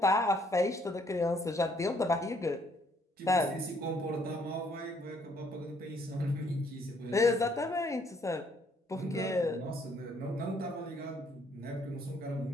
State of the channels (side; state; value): both; normal; correlation 0.66